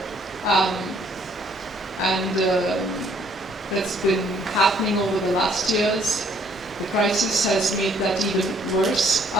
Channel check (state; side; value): normal; both; correlation 0.64